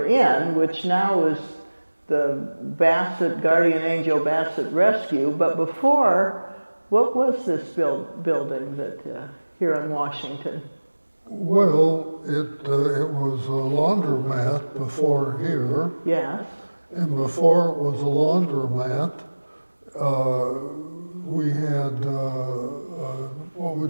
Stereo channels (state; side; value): inverted; both; correlation -1.00